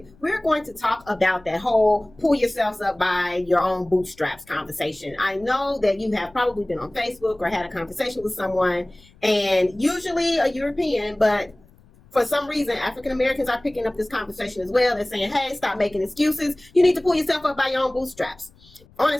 We're going to talk about that whole pull yourselves up by your own bootstraps conversation. I know that you have probably been on Facebook or had a conversation with someone, and usually a European, but for some reason, African Americans are picking up this conversation as well. They're saying, hey, stop making excuses. You need to pull yourself up by your own bootstraps. On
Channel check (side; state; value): left; noise; rumble, 27 dB below the sound